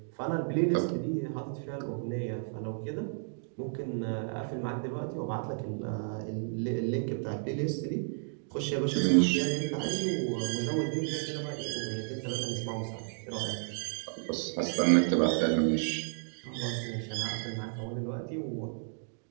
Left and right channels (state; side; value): silent; left; digital silence